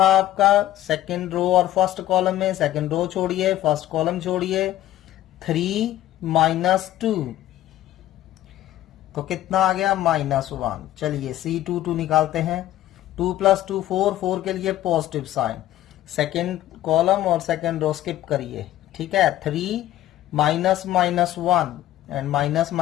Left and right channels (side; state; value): right; quieter; 13.7 dB